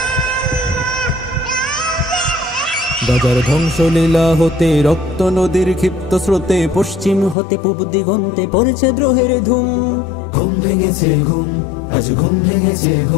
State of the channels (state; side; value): drops out; right; at 7.4 s